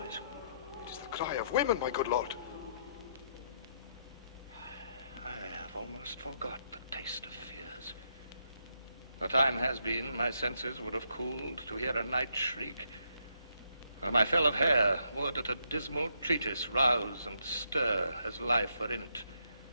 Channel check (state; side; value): inverted; both; correlation -0.76